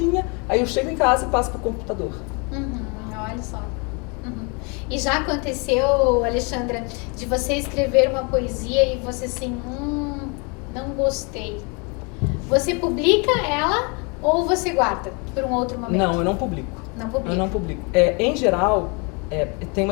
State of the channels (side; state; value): right; quieter; 32.4 dB